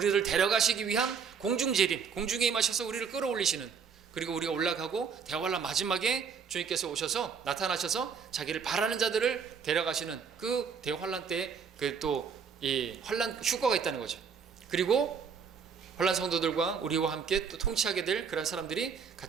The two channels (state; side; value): quieter; left; 6.3 dB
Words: 데려가시기 위한 공중 재림, 공중에 임하셔서 우리를 끌어올리시는, 그리고 우리가 올라가고 대환란 마지막에 주님께서 오셔서 나타나셔서 자기를 바라는 자들을 데려가시는 그 대환란 때 그 또 이 환란 휴거가 있다는 거죠. 그리고 환란 성도들과 우리와 함께 또 통치하게 될 그런 사람들이